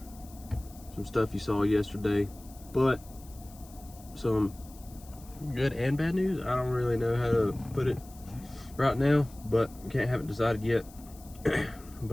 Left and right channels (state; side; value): noise; left; hiss, 22 dB below the sound